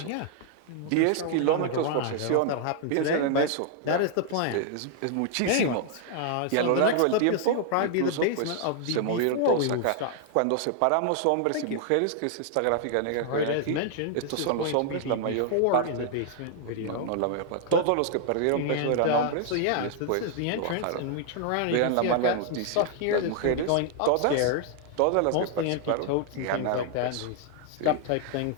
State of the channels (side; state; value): both; different; correlation 0.00